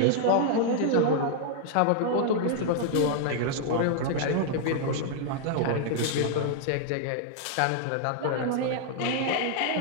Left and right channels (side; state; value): both; different; correlation -0.01